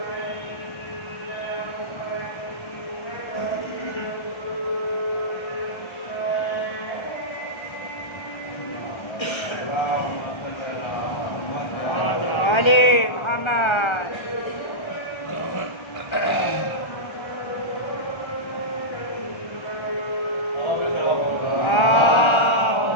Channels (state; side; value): late; right; 1.3 ms